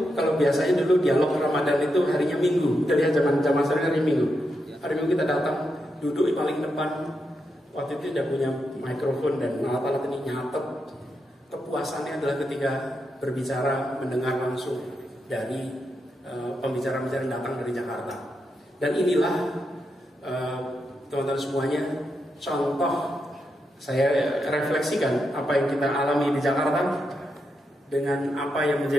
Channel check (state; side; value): normal; both; correlation 0.84